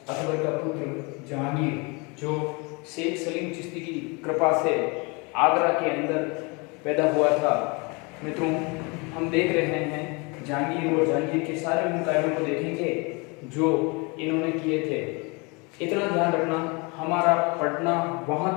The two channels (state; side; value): quieter; right; 29.5 dB